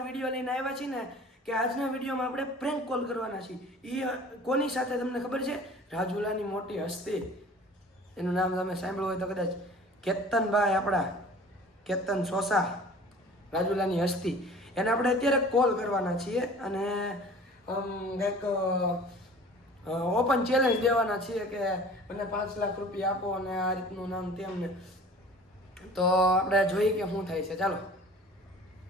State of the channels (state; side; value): normal; both; correlation 0.45